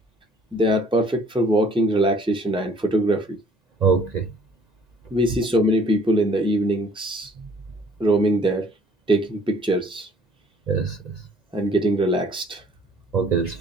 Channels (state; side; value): normal; both; correlation 0.57